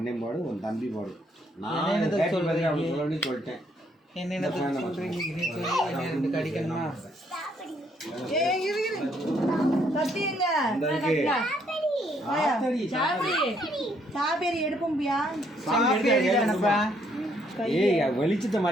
பாடு, உன் தம்பி பாடு. நான் சொல்றேன் அப்படி சொல்லிட்டேன். என்ன சொல்றீங்க? கடிக்கணுமா? ஏய் இரு இரு. கத்திங்க. சாபேரி எடுப்போம்பியா? சாபேரி தானப்பா. ஏய் வெளிச்சத்தை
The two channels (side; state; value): both; normal; correlation 0.69